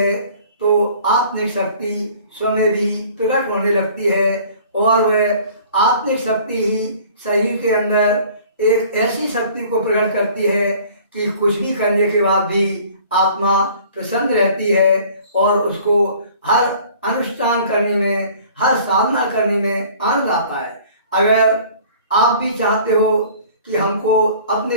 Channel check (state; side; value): inverted; both; correlation -0.50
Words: तो आत्मिक शक्ति स्वयं भी प्रकट होने लगती है, और वह आत्मिक शक्ति ही शरीर के अंदर एक ऐसी शक्ति को प्रकट करती है कि कुछ भी करने के बाद भी आत्मा प्रसन्न रहती है, और उसको हर अनुष्ठान करने में, हर साधना करने में आनंद आता है। अगर आप भी चाहते हो कि हमको